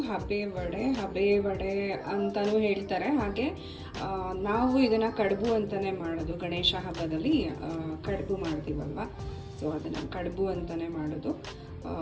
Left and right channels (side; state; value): both; identical; correlation 1.00